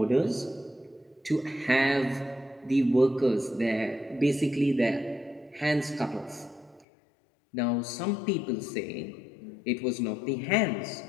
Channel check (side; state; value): right; drops out; at 6.9 s